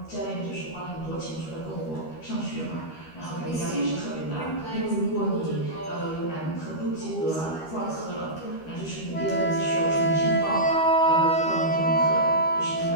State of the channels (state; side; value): late; right; 13 ms